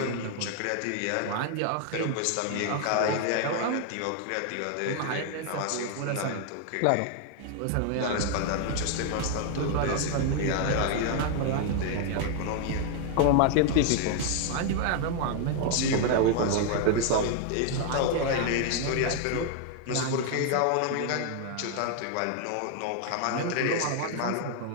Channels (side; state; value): both; different; correlation 0.00